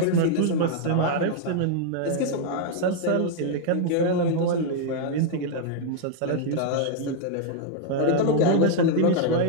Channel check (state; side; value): different; both; correlation 0.00